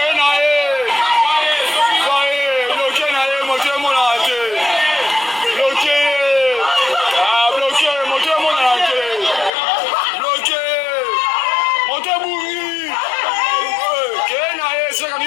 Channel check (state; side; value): drops out; right; at 9.5 s